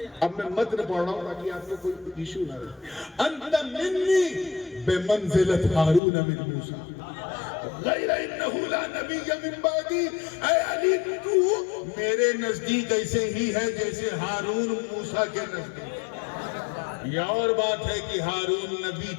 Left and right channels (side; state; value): right; drops out; at 6.0 s